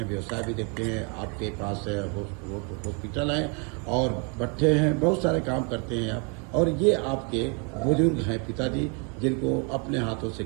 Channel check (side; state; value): left; quieter; 35.4 dB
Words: व्यवसाय भी देखते हैं। आपके पास हॉस्पिटल है और भट्ठे हैं, बहुत सारे काम करते हैं आप। और ये आपके बुजुर्ग हैं पिताजी, जिनको अपने हाथों से